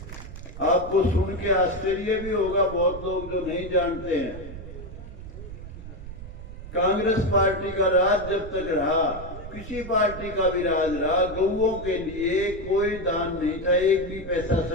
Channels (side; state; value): right; noise; rumble, 12 dB below the sound